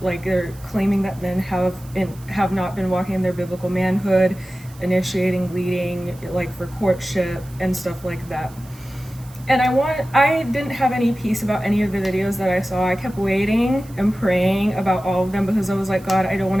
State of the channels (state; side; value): noise; right; hiss, 24 dB below the sound